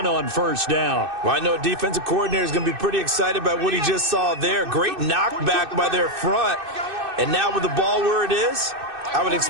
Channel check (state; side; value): late; left; 2.6 ms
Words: on 1st down. Well, I know a defensive coordinator is going to be pretty excited by what he just saw there. Great knockback by their front. And now with the ball where it is, I would